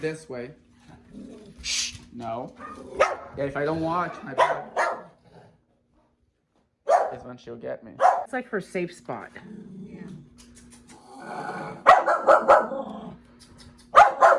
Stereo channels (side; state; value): both; identical; correlation 1.00